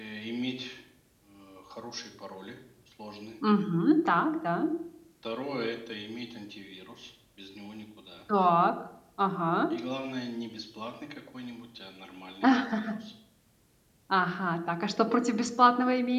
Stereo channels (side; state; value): both; identical; correlation 1.00